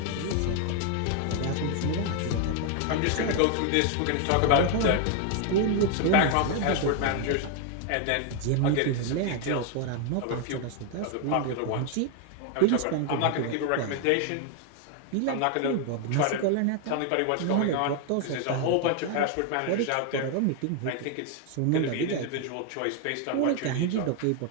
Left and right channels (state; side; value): different; both; correlation 0.00